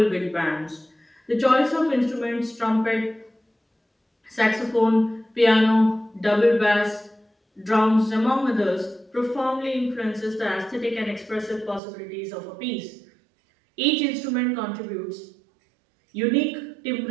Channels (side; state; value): left; drops out; at 11.8 s